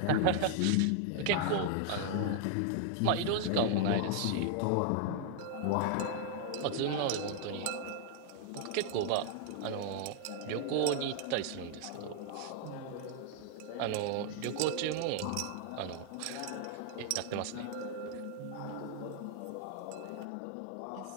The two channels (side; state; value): both; different; correlation 0.00